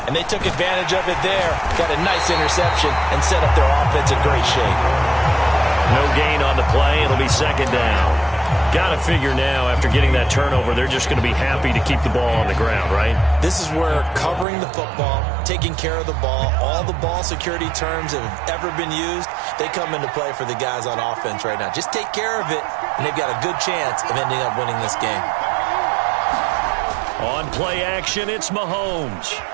And they took advantage of it there, got a nice interception, and set up their offense in great shape. No gain on the play. It'll be 2nd down. Got to figure now, after getting that turnover, they're just going to be happy to keep the ball on the ground, right? This is where covering the football, taking care of the ball, all the ball security terms that have ever been used, they come into play for the guys on offense right now. Just take care of it, and they've got a good chance of ending up winning this game. On play action, it's Mahomes.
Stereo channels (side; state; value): left; drops out; at 14.5 s